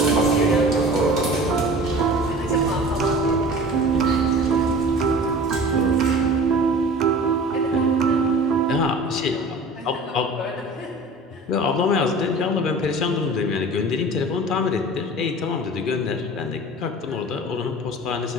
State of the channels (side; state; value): both; normal; correlation 0.40